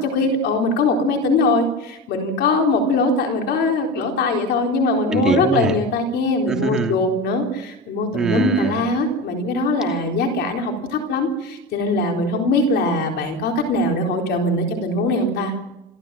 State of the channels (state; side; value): normal; both; correlation 0.25